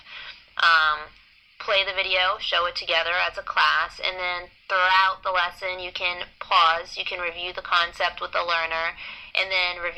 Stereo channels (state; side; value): identical; both; correlation 1.00